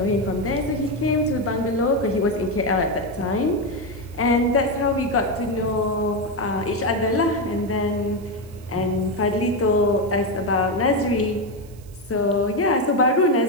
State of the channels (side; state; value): right; noise; hiss, 26 dB below the sound